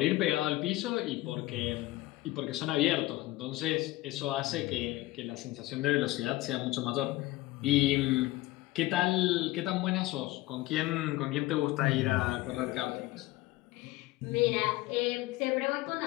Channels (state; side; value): quieter; right; 18.5 dB